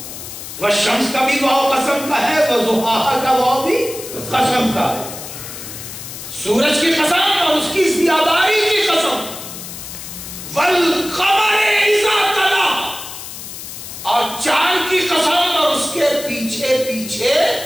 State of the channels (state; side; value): noise; left; hiss, 11 dB below the sound